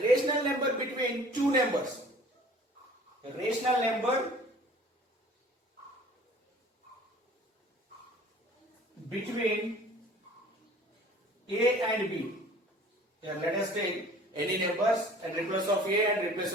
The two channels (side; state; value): both; normal; correlation 0.48